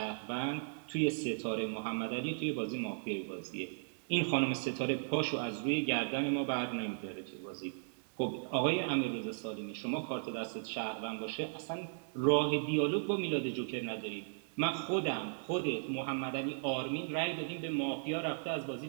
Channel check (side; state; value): left; silent; 53 dB below the other